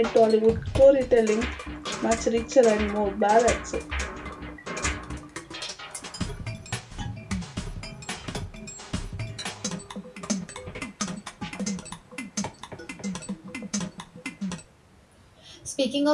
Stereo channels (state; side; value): identical; both; correlation 1.00